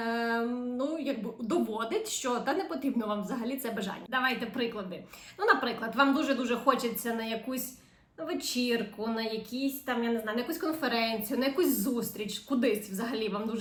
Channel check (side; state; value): both; identical; correlation 1.00